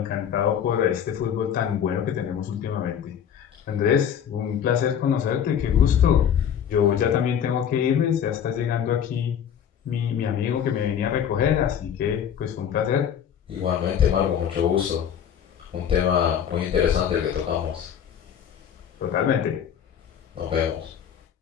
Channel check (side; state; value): right; quieter; 8.7 dB